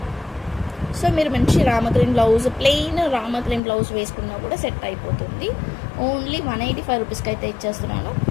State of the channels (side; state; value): right; drops out; at 3.6 s